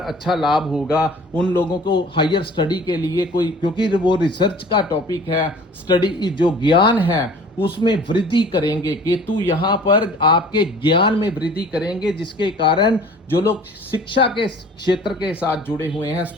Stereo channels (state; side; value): normal; both; correlation 0.48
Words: अच्छा लाभ होगा, उन लोगों को हायर स्टडी के लिए कोई, क्योंकि वो रिसर्च का टॉपिक है, स्टडी जो ज्ञान है उसमें वृद्धि करेंगे। केतु यहाँ पर आपके ज्ञान में वृद्धि करेंगे, जिसके कारण जो लोग शिक्षा के क्षेत्र के साथ जुड़े हुए हैं,